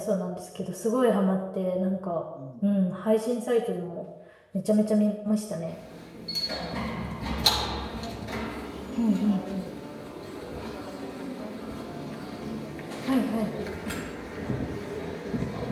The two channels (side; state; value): both; identical; correlation 1.00